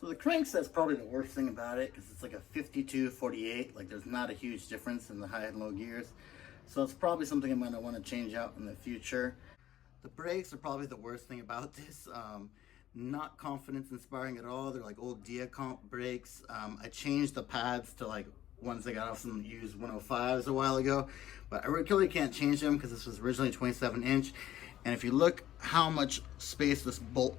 the crankset's probably the worst thing about it because it's like a 52-48. Like there's not a huge difference in the high and low gears. So it's probably something I'm gonna want to change out in the future. The brakes are probably the worst thing about this. Not confidence inspiring at all. They're like old Diacomp brakes. I changed the pads to like ones I got off some used 105s a while ago, but I really can't change them because this was originally 27-inch. And if you look how much space this bolt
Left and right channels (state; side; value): quieter; right; 12.7 dB